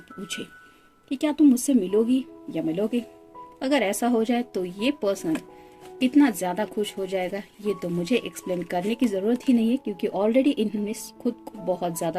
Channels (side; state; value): both; identical; correlation 1.00